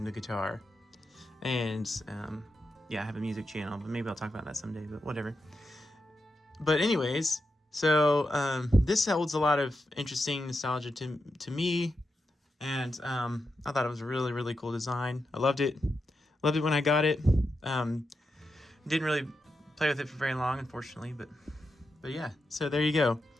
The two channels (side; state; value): both; normal; correlation 0.87